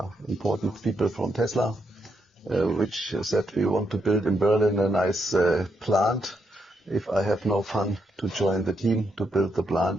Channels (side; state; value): both; normal; correlation 0.79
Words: important people from Tesla, which said we want to build in Berlin a nice plant. If I have no fun to join the team to build the